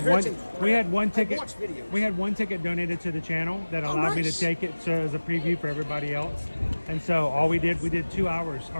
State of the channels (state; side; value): inverted; both; correlation -1.00